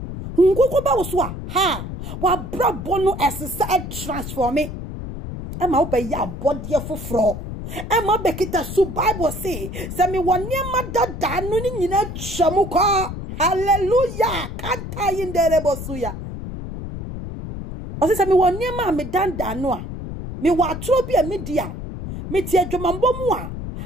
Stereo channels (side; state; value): left; noise; rumble, 8 dB below the sound